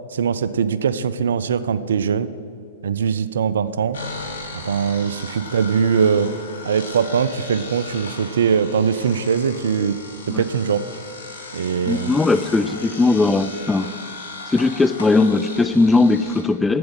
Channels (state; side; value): normal; both; correlation 0.05